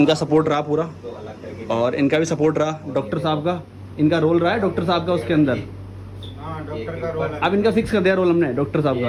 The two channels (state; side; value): identical; both; correlation 1.00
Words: सपोर्ट रहा पूरा, और इनका भी सपोर्ट रहा। डॉक्टर साहब का इनका रोल रहा है, डॉक्टर साहब का उसके अंदर। डॉक्टर का रोल है। अब इनका फिक्स कर दिया रोल हमने डॉक्टर साहब